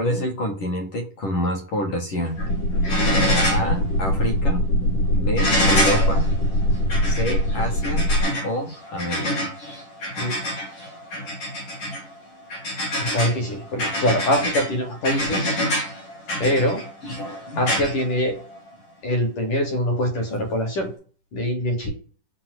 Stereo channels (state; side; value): late; right; 10 ms